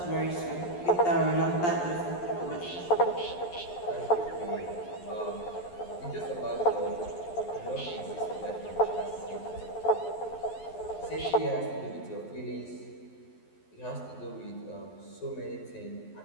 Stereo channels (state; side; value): late; right; 11 ms